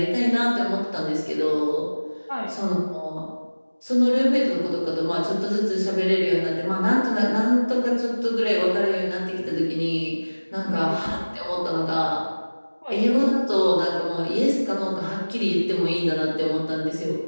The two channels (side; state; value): both; inverted; correlation -1.00